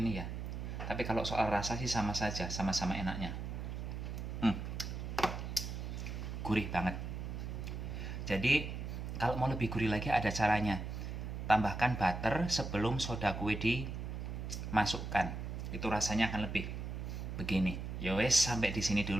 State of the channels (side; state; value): right; noise; hum, 5 dB below the sound